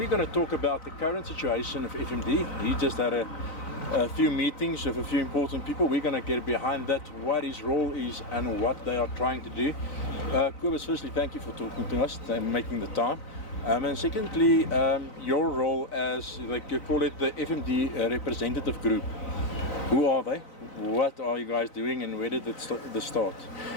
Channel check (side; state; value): right; late; 3.9 ms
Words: going to talk about the current situation of FMD. He just had a few meetings with a few important people. We're going to get behind that, what his role is and what they are trying to do. Kobus, firstly, thank you for talking to us and making the time. And secondly, your role as, like you call it, the FMD Representative Group. Who are they? What are you guys doing and where did it start?